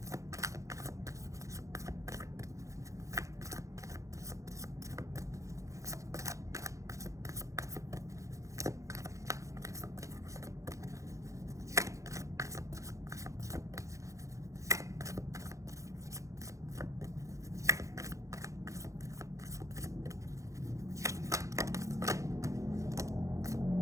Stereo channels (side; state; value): left; late; 0.15 ms